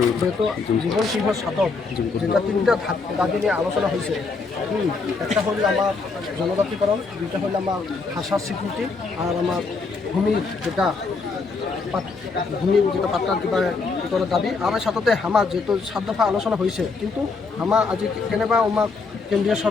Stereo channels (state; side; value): quieter; right; 4.3 dB